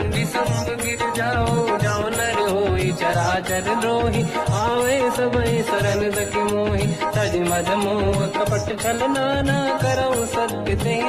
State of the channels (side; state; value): both; identical; correlation 1.00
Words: संग गिर जाओ। जाओ नर होई चराचर द्रोही, आवे सबई शरण सखी मोहि। तज मद मोह कपट छल नाना, करऊ सत्य ते